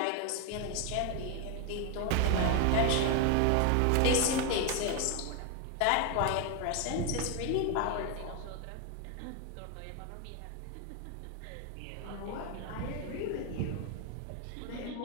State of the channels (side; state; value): both; different; correlation 0.01